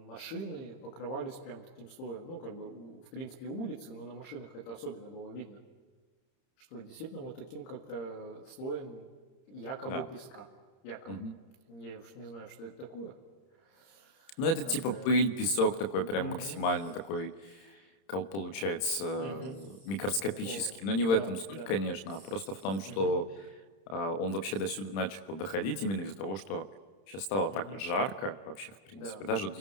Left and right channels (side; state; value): right; late; 31 ms